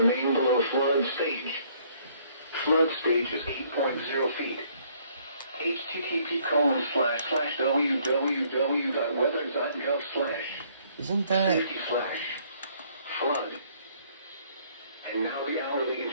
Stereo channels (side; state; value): both; inverted; correlation -0.63